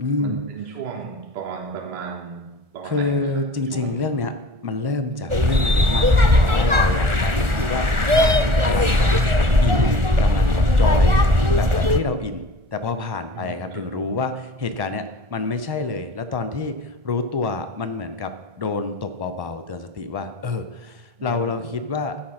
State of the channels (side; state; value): left; late; 1.4 ms